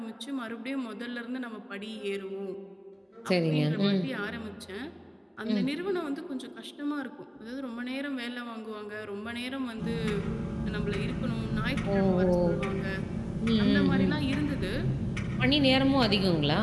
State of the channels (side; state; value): both; identical; correlation 1.00